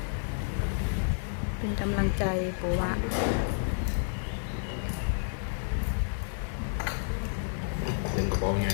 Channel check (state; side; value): silent; right; 58 dB below the other